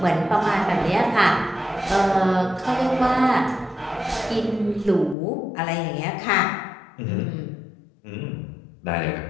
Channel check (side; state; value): right; drops out; at 5.2 s